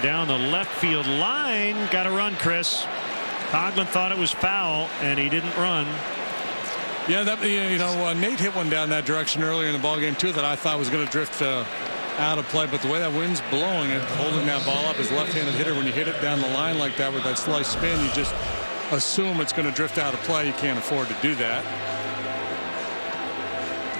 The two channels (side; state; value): both; inverted; correlation -1.00